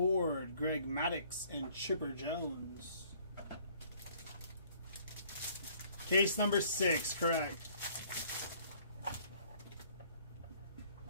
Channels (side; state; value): both; inverted; correlation -0.59